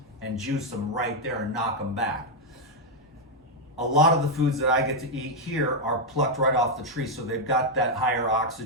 and juice them right there and knock them back. A lot of the foods that I get to eat here are plucked right off the tree, so they've got that higher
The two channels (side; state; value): both; normal; correlation 0.01